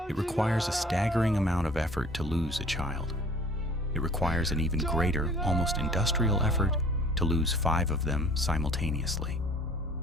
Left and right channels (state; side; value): normal; both; correlation 0.51